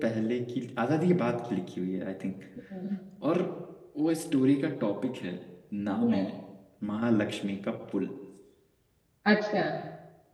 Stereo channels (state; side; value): identical; both; correlation 1.00